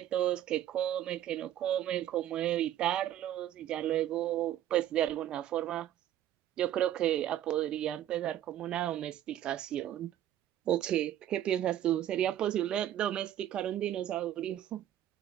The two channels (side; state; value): left; quieter; 11.9 dB